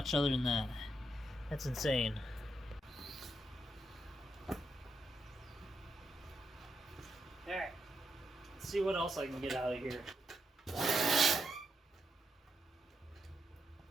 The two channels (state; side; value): normal; both; correlation 0.81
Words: other than that. That's insane. Alright, let's see what else I can get out of here.